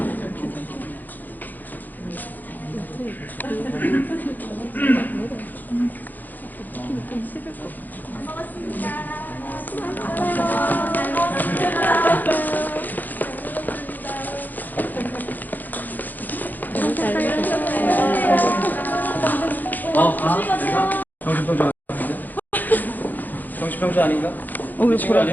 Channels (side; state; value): right; late; 0.085 ms